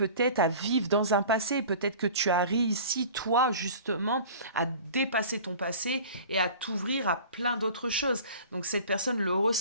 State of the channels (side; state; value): both; inverted; correlation -0.42